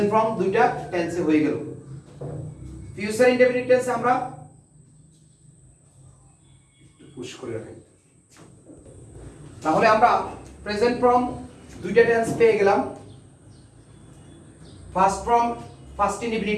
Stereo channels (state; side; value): identical; both; correlation 1.00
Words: ফর্ম দুইটা টেন্সে হয়ে গেল। ফিউচার ইনডেফিনিট টেন্সে আমরা পুশ করে রাখি। তাহলে আমরা প্রেজেন্ট ফর্ম দুইটা টেন্স পেয়ে গেলাম। ফার্স্ট ফর্ম ফার্স্ট